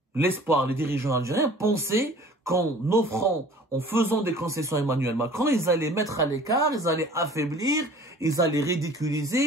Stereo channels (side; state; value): both; normal; correlation 0.47